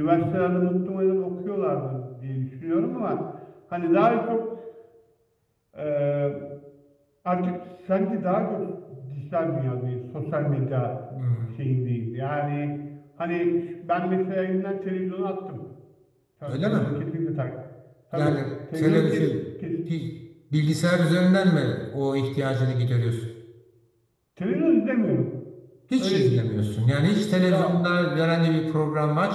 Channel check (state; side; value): identical; both; correlation 1.00